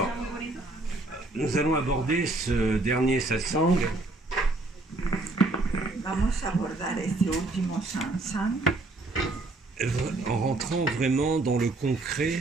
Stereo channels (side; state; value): left; quieter; 3.0 dB